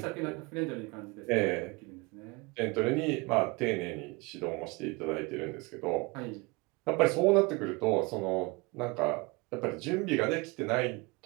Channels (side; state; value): left; quieter; 26.3 dB